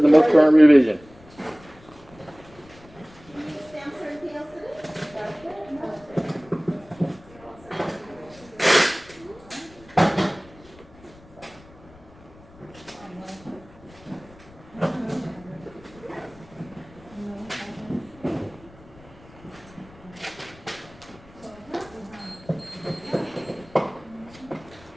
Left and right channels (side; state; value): left; noise; rumble, 23 dB below the sound